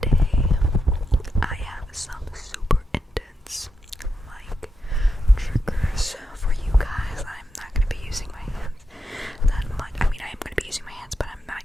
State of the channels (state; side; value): normal; both; correlation 0.86